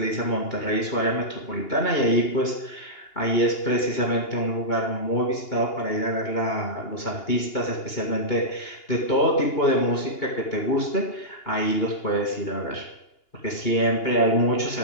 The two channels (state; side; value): late; right; 2.8 ms